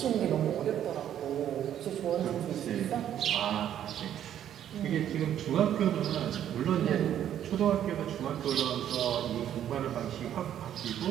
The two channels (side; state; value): left; quieter; 10.5 dB